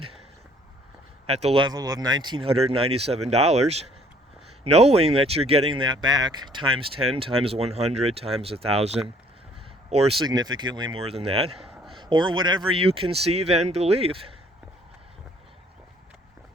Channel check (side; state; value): both; normal; correlation 0.60